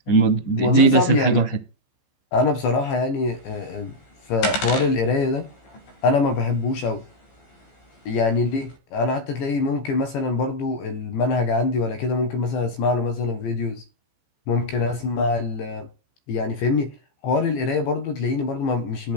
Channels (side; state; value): right; late; 14 ms